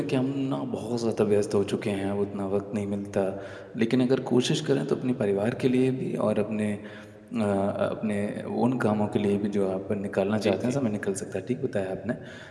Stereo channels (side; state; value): both; identical; correlation 1.00